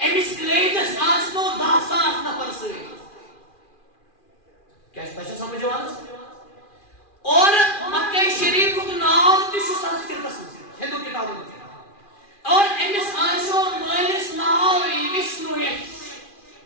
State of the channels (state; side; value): late; right; 2.4 ms